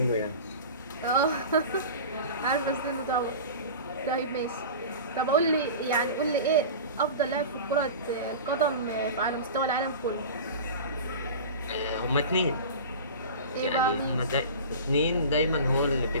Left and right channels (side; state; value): both; inverted; correlation -0.34